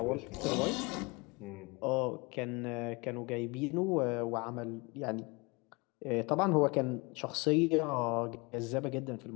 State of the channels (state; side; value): quieter; right; 27.0 dB